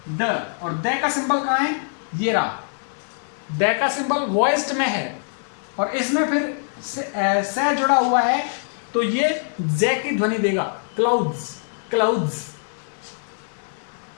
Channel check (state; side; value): silent; right; digital silence